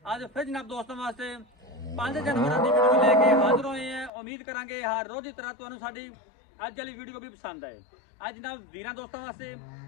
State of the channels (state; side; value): drops out; right; at 4.1 s